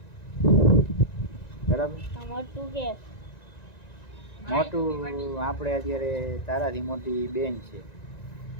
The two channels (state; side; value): late; right; 1.9 ms